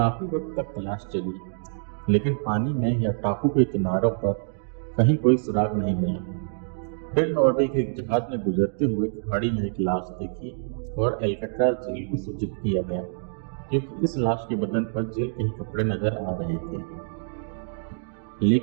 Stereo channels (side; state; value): left; silent; digital silence